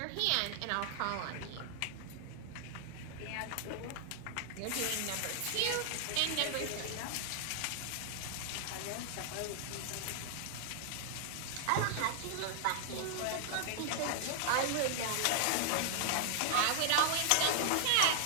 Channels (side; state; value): both; different; correlation 0.00